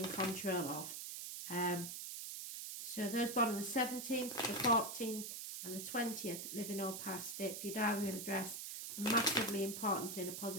control of. So those born on the 17th, the 14th and the 20th, living or past, date for your diary and address, massively important in a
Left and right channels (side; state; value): right; noise; hiss, 6 dB below the sound